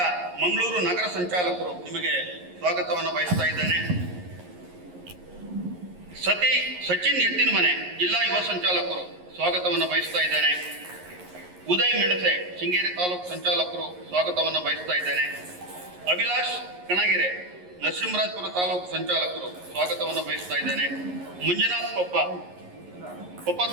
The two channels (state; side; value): late; left; 11 ms